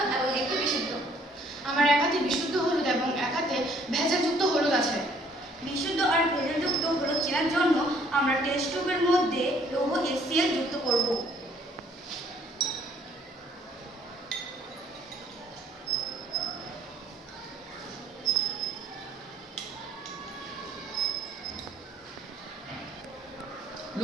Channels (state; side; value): normal; both; correlation 0.61